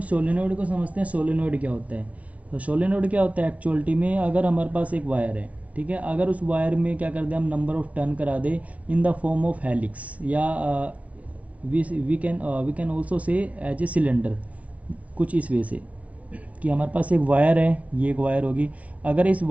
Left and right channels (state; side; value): late; left; 0.068 ms